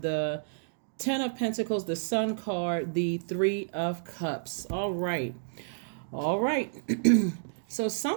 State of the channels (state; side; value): silent; left; digital silence